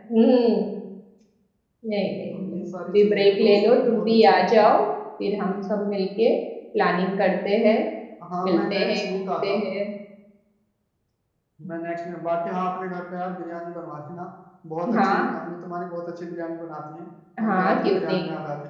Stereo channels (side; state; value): both; identical; correlation 1.00